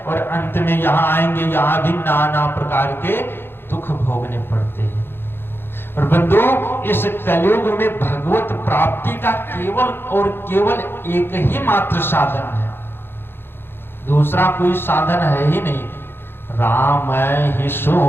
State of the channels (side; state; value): right; late; 0.10 ms